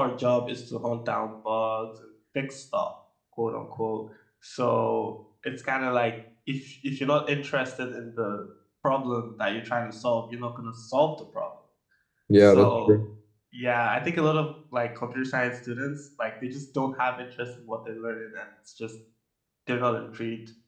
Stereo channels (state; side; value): identical; both; correlation 1.00